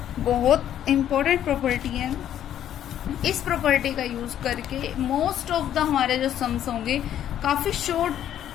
बहुत इंपॉर्टेंट प्रॉपर्टी है। इस प्रॉपर्टी का यूज करके मोस्ट ऑफ द हमारे जो सम्स होंगे काफी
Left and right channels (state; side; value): quieter; right; 10.8 dB